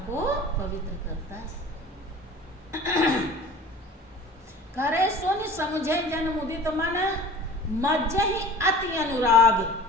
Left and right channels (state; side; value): normal; both; correlation 0.43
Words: को पवित्र करता है। करे सुन समझे जन मुदित मन, मज्जहि अति अनुराग।